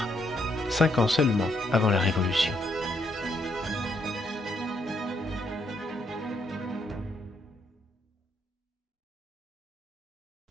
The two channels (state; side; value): normal; both; correlation 0.74